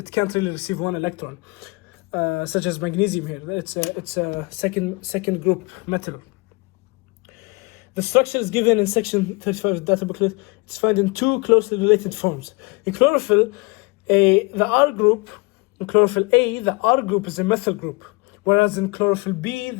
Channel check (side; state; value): right; quieter; 27.2 dB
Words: can't really receive 1 electron, such as magnesium here. It's a second group metal. The structure is given in section 35 of the data booklet. It's found in 2 closely related forms. In chlorophyll, the R group. In chlorophyll A, the R group is a methyl group, whereas in chlorophyll B,